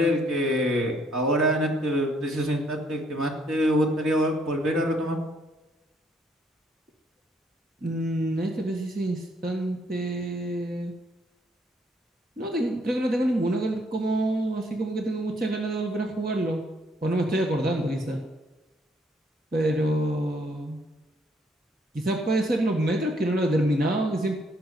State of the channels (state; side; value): normal; both; correlation 0.69